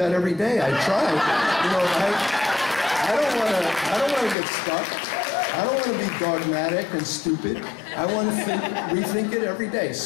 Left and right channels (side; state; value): right; drops out; at 4.4 s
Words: every day. I try. You know, I don't want to get stuck. I don't want to be dogmatic and stupid. I want to rethink it every day.